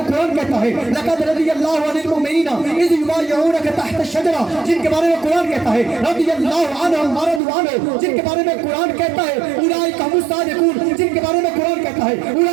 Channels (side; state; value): left; drops out; at 7.4 s